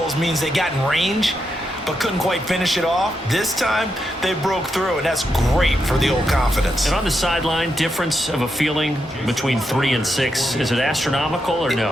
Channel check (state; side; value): normal; both; correlation 0.84